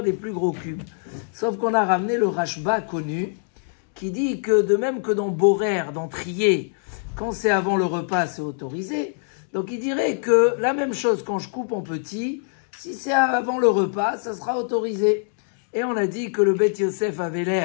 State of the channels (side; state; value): right; silent; digital silence